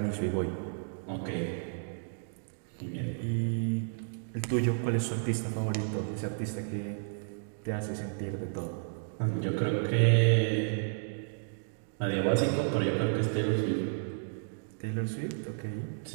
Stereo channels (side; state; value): left; silent; digital silence